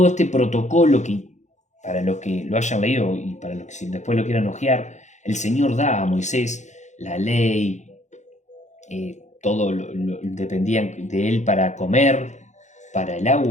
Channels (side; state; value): right; late; 0.34 ms